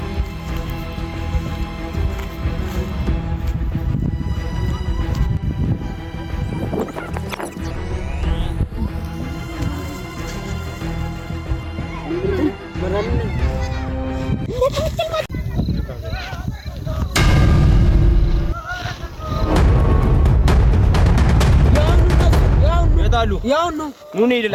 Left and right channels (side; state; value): both; identical; correlation 1.00